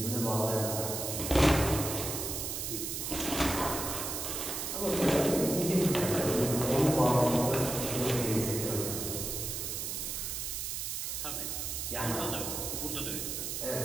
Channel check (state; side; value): noise; right; hiss, 3 dB below the sound